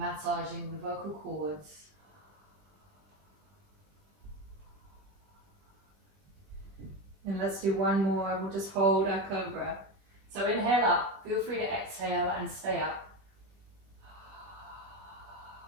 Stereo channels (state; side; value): late; left; 20 ms